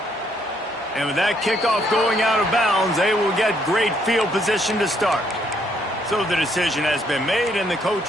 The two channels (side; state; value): both; normal; correlation 0.70